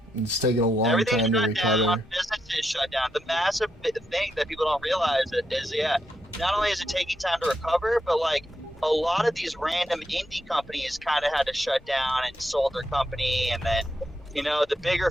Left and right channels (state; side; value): normal; both; correlation 0.82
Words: It's taking a long Everything time to shut recover. down, businesses shut down. The massive thing that people don't realize is, yeah, not only is it taking time to recover, but like a lot of these random indie companies kind of had to shut down and sold their company, and then, you know, the bigger